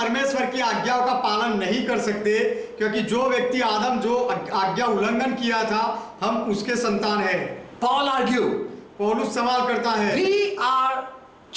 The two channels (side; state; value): both; identical; correlation 1.00